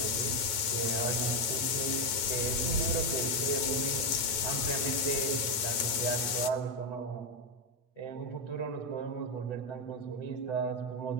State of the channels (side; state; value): right; late; 9.1 ms